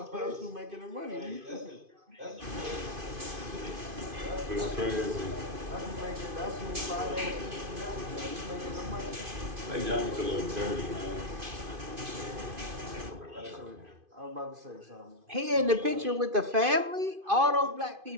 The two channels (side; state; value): left; late; 2.5 ms